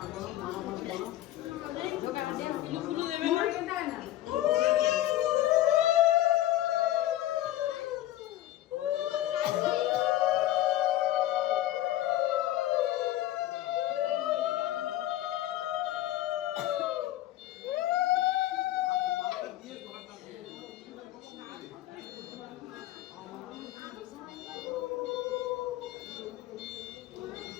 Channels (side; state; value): right; quieter; 14.1 dB